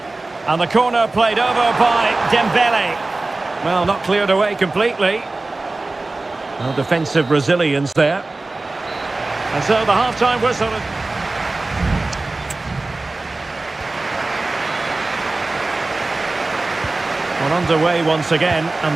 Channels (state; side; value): quieter; left; 3.2 dB